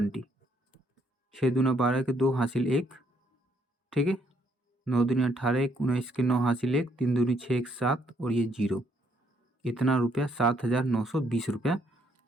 6 दूना 12 के 2 हासिल 1। ठीक है, 9 दूनी 18, 19 के 9 हासिल 1, 3 दूनी 6 1 7 और ये 0, इतना रुपया 7,920 रुपया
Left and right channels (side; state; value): both; normal; correlation 0.70